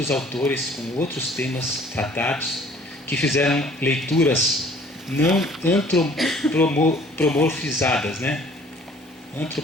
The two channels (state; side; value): normal; both; correlation 0.54